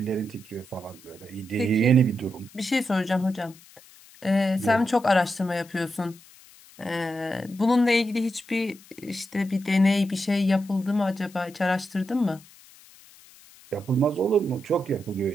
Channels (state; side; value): noise; left; hiss, 24 dB below the sound